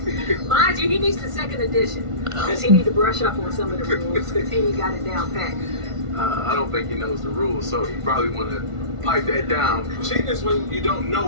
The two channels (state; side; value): late; left; 1.5 ms